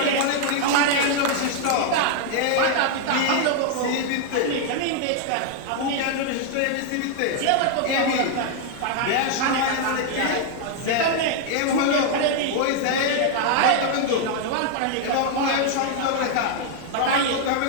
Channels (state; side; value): different; both; correlation 0.00